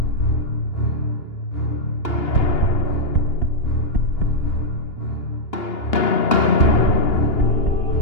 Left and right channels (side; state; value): right; late; 2.8 ms